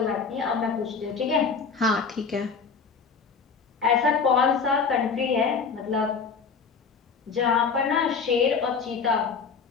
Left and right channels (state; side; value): quieter; right; 5.4 dB